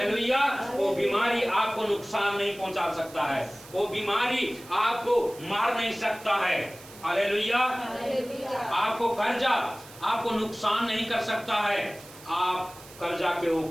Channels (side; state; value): right; noise; hiss, 19 dB below the sound